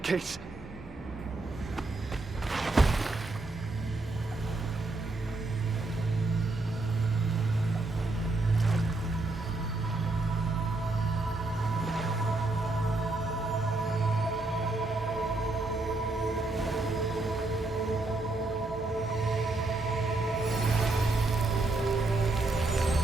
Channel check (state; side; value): quieter; left; 3.1 dB